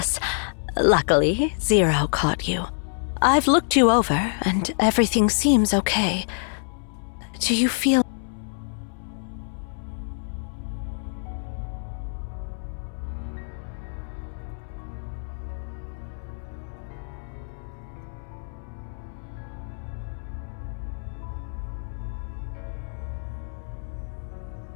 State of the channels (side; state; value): right; silent; 61 dB below the other